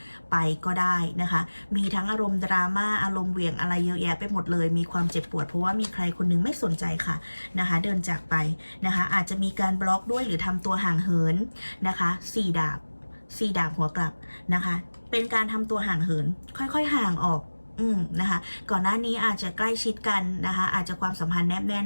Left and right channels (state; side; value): inverted; both; correlation -1.00